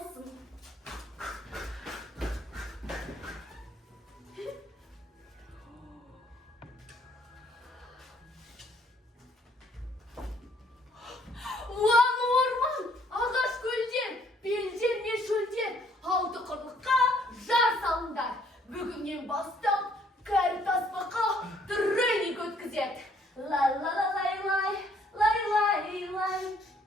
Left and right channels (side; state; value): both; normal; correlation 0.64